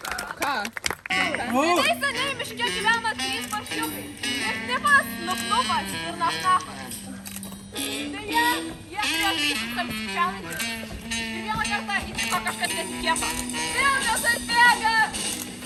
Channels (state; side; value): identical; both; correlation 1.00